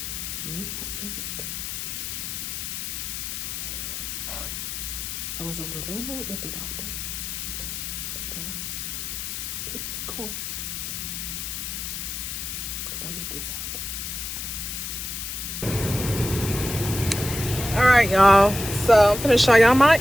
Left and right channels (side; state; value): left; noise; hiss, 5 dB below the sound